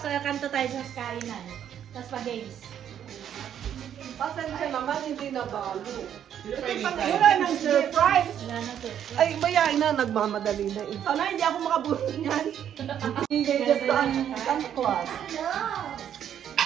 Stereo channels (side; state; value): left; quieter; 9.6 dB